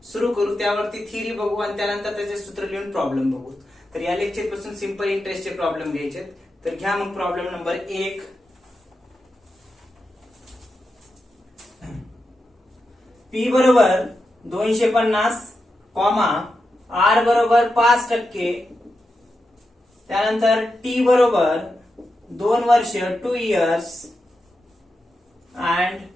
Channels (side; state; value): both; normal; correlation 0.88